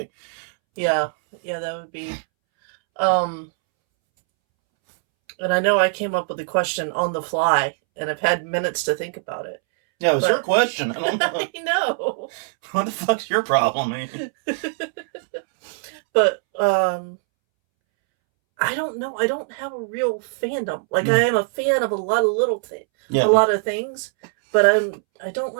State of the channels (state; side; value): silent; left; 64 dB below the other